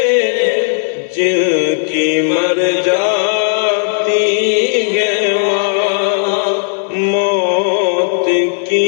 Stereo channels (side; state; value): right; silent; digital silence